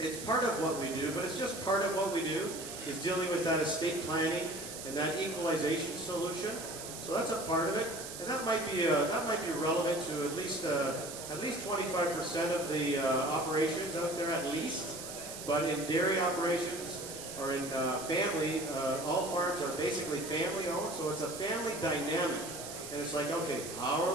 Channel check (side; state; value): right; noise; hiss, 9 dB below the sound